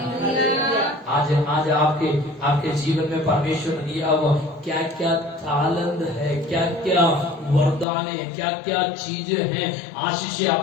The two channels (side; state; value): right; drops out; at 7.9 s